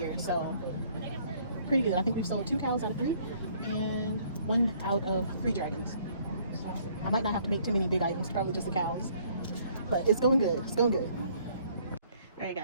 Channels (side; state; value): both; inverted; correlation -0.61